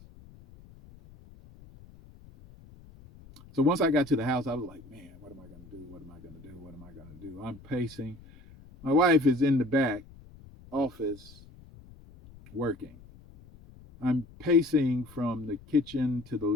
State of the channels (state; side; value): noise; left; rumble, 21 dB below the sound